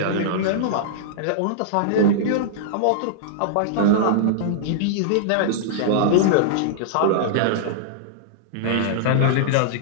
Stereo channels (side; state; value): both; different; correlation -0.02